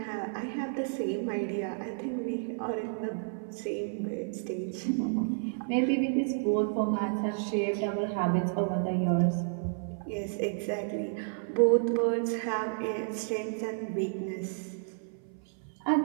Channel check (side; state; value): left; silent; 57 dB below the other